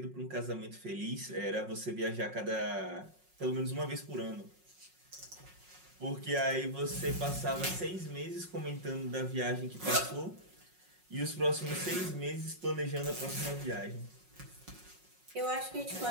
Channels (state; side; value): late; left; 5.5 ms